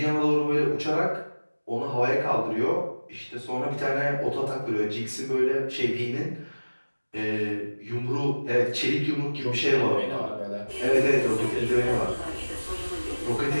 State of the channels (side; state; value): both; inverted; correlation -1.00